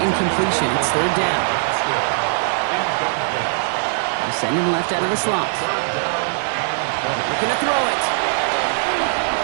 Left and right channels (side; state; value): left; silent; digital silence